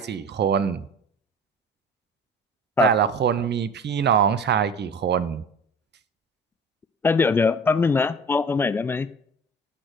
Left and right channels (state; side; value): normal; both; correlation 0.40